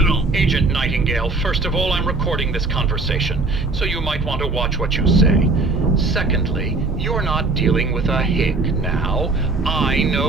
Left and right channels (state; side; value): quieter; left; 3.5 dB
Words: Agent Nightingale, first of all, I'm recording this conversation, so you might want to watch what you say. Secondly, you're not dealing with a hick now. I